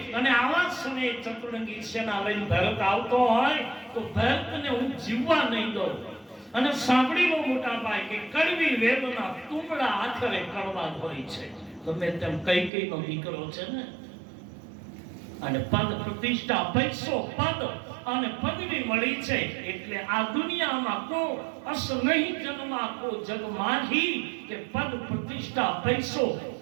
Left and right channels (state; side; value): drops out; left; at 12.7 s